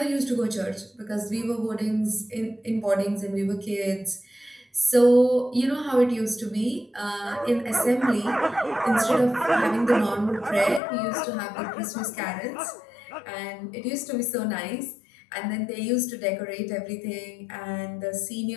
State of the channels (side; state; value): right; drops out; at 10.8 s